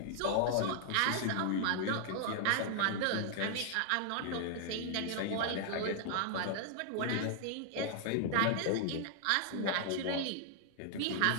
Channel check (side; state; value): both; different; correlation 0.00